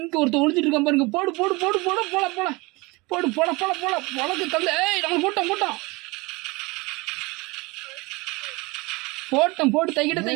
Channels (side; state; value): left; quieter; 24.8 dB